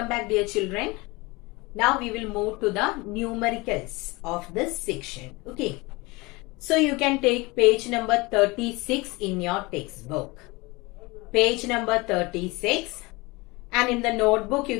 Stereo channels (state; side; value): quieter; right; 24.0 dB